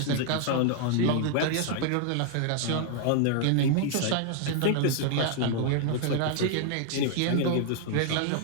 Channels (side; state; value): both; different; correlation 0.00